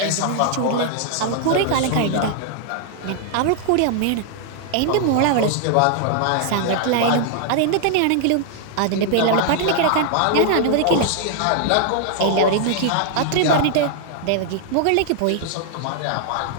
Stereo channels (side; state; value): both; different; correlation 0.00